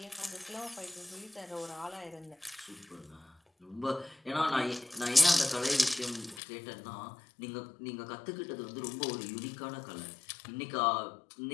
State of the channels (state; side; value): drops out; right; at 6.4 s